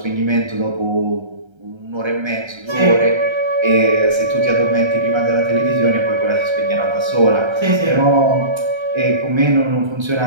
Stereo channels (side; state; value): left; late; 1.3 ms